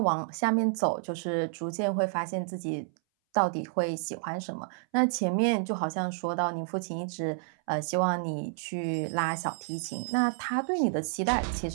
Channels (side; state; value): left; silent; 58 dB below the other